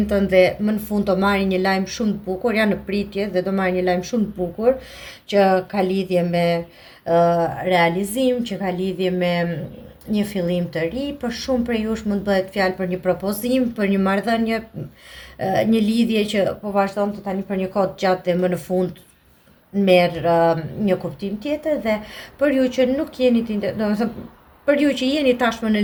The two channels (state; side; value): identical; both; correlation 1.00